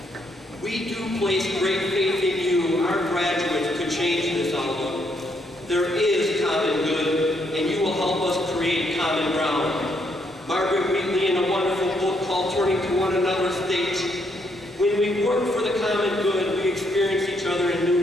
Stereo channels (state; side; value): normal; both; correlation 0.74